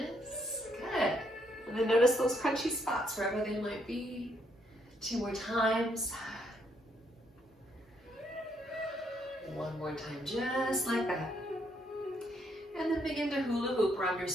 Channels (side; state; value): both; normal; correlation 0.73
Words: Good. And then notice those crunchy spots wherever they might be. 2 more times. One more time, just like that. And then begin to hula hoop around your